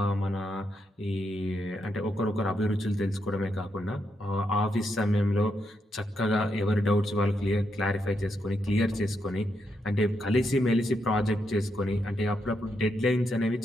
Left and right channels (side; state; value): both; normal; correlation 0.81